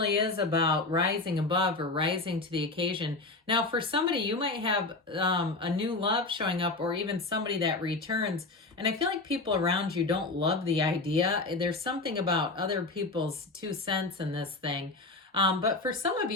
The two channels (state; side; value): quieter; right; 3.3 dB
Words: is about rising above or rising to the occasion. Now, for somebody, you might have a new love showing up or even somebody that returns. And I feel like people around you don't love the idea. There's something about other people's 2 cents in this thing. But for some of